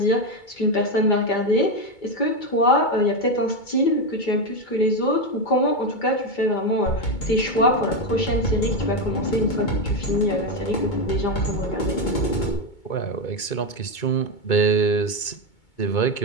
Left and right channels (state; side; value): late; right; 2.2 ms